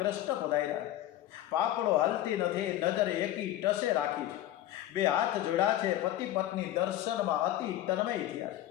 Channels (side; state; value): right; quieter; 13.5 dB